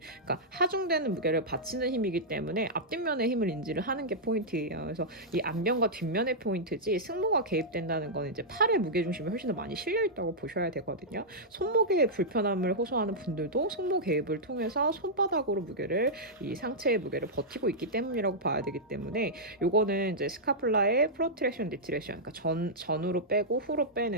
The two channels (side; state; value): both; normal; correlation -0.09